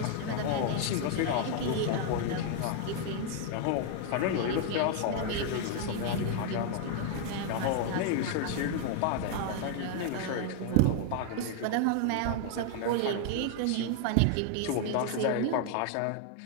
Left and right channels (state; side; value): different; both; correlation 0.00